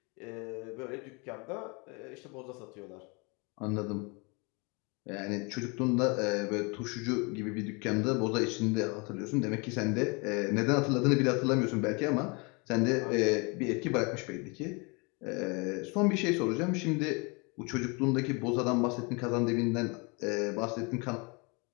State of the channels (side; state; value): right; quieter; 30.4 dB